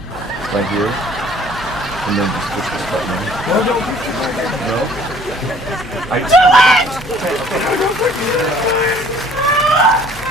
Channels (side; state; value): both; normal; correlation 0.55